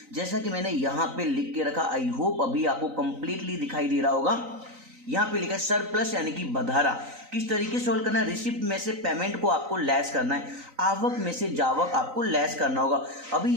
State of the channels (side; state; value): left; late; 3.9 ms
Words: जैसा कि मैंने यहाँ पे लिख के रखा। आई होप अभी आपको कंप्लीटली दिखाई दे रहा होगा। यहाँ पे लिखा है सरप्लस यानी कि बधारा। किस तरीके से सोल्व करना है, रिसिप्ट में से पेमेंट को आपको लेस करना है, आवक में से जावक आपको लेस करना होगा। अभी